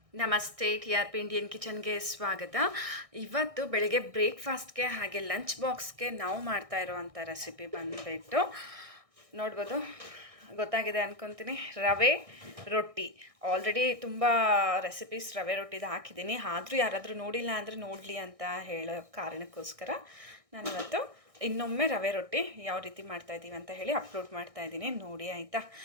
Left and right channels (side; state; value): left; late; 1.6 ms